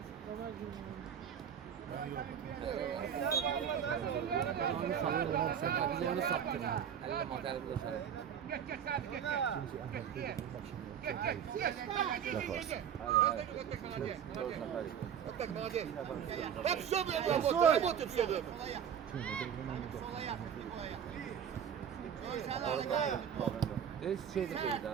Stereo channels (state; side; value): quieter; left; 8.5 dB